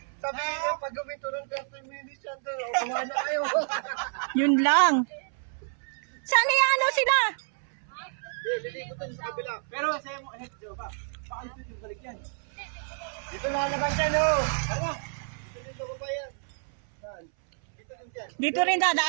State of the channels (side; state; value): left; silent; 59 dB below the other